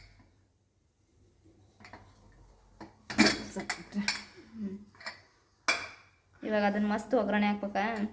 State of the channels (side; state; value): both; identical; correlation 1.00